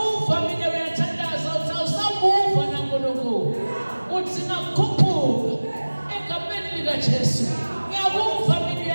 mina uyathandaza uthi awusamuva nankulunkulu. Uthi ngakhuphuka egameni likajesu. Ngiyakuva mina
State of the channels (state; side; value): inverted; both; correlation -1.00